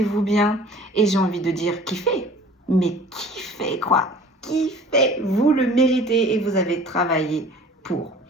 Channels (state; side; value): normal; both; correlation 0.47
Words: bien. Et j'ai envie de dire kiffez. Mais kiffez quoi. Kiffez. Vous le méritez et vous avez travaillé pour.